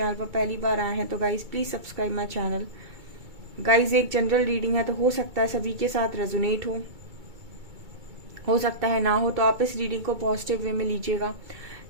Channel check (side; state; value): left; late; 2.2 ms